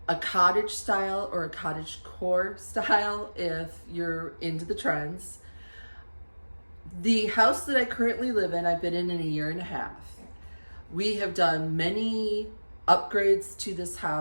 a cottage style or a cottage core style if you're into the trends. The house that I currently live in, I've been in a year and a half. We have done many upgrades to this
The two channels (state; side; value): inverted; both; correlation -1.00